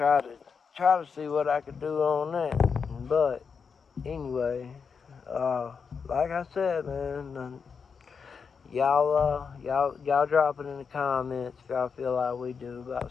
to see what I could do on that. But anyway, like I said, man, y'all drop it in the comments if y'all feel like we do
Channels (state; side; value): quieter; right; 5.9 dB